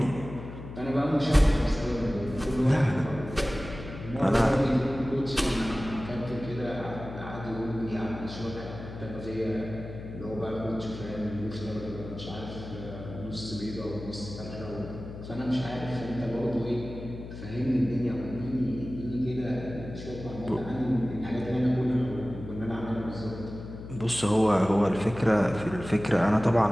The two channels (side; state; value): left; noise; hum, 11 dB below the sound